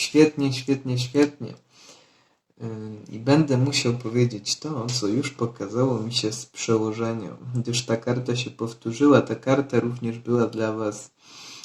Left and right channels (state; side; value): identical; both; correlation 1.00